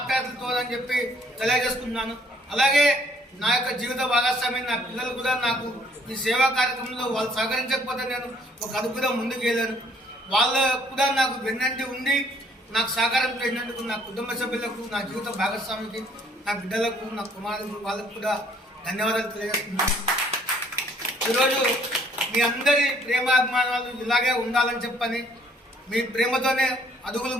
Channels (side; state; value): both; normal; correlation 0.62